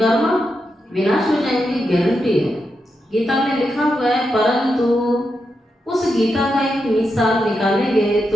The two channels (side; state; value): both; normal; correlation 0.86